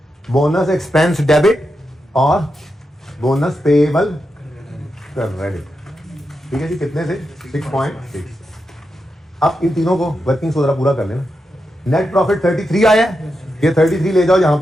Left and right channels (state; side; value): normal; both; correlation 0.87